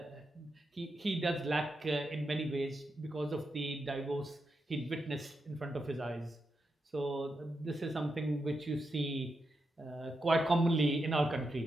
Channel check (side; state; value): both; normal; correlation 0.86